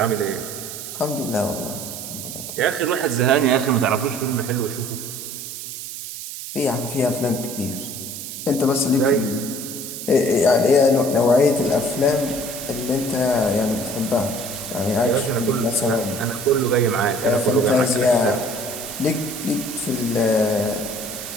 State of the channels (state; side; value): noise; right; hiss, 9 dB below the sound